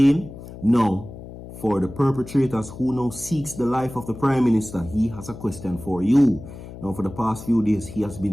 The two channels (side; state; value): left; noise; hum, 14 dB below the sound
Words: Now, for the perpetrators who now seeks the life of the Prime Minister, he has a question for you. Now, for the past few days, he has